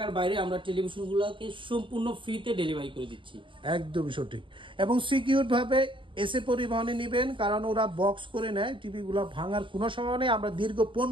বাইরে আমরা টেলিভিশনগুলোকে সম্পূর্ণ ফ্রিতে ডেলিভারি করে দিচ্ছি। একদমই সঠিক, এবং সিকিউর ভাবে এসে পরিবহনে নেবেন, কারণ ওরা বক্স করে নেয়, টিভিগুলো ভাঙার কোনো সময় নেই। আমরা দীর্ঘ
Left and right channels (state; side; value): late; left; 0.24 ms